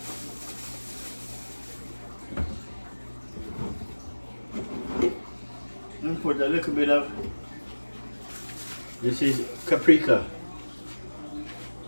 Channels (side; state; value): both; inverted; correlation -1.00